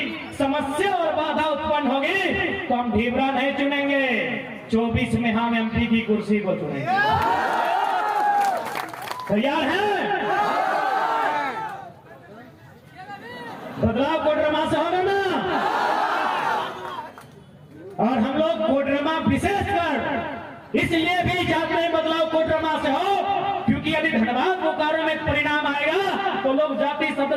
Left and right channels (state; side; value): identical; both; correlation 1.00